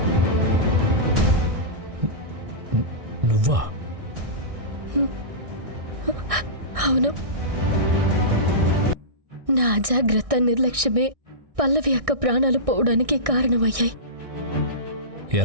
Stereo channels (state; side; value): late; left; 1.6 ms